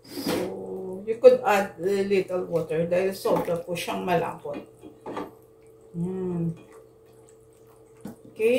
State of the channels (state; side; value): identical; both; correlation 1.00